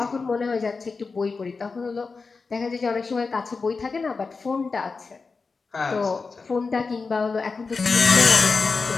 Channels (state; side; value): quieter; right; 4.5 dB